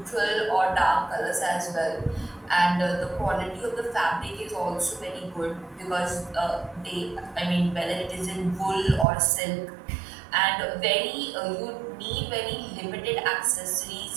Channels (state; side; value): drops out; left; at 9.1 s